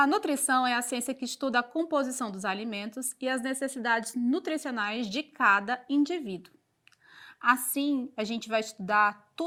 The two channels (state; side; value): identical; both; correlation 1.00